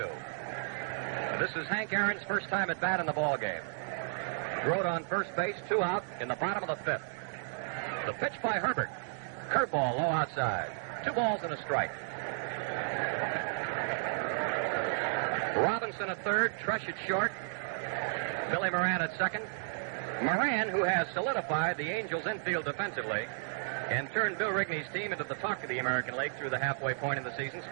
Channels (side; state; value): left; silent; digital silence